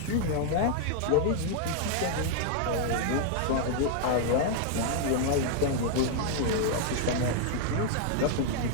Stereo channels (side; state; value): both; different; correlation 0.00